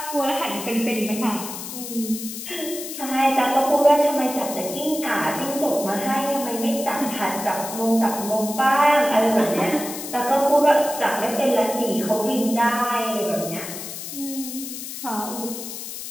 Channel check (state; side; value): noise; left; hiss, 9 dB below the sound